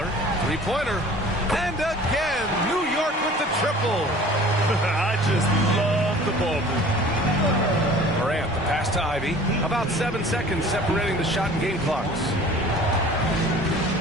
Three-pointer. And again, New York with the triple. I just love the ball movement. Morant, the pass to Ivy. About 7 seconds separating the shot and game clocks.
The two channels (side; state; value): both; normal; correlation 0.46